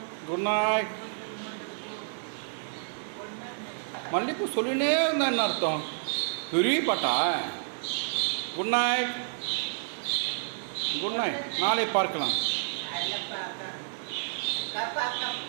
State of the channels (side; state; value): left; silent; digital silence